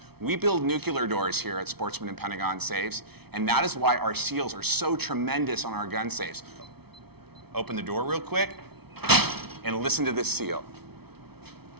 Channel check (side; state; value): left; late; 0.97 ms